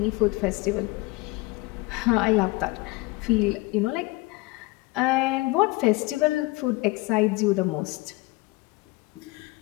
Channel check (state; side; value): quieter; right; 22.5 dB